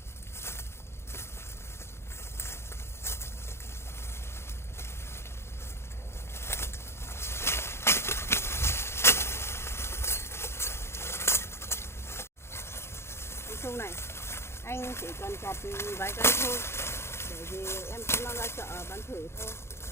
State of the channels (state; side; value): late; right; 0.12 ms